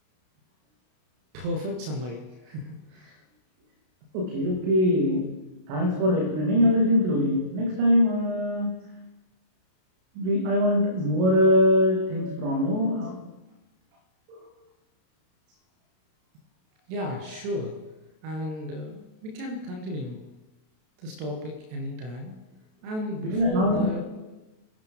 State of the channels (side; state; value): left; late; 32 ms